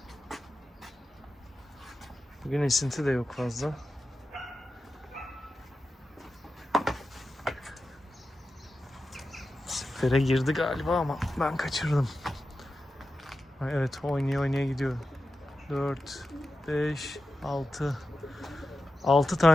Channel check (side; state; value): both; normal; correlation 0.92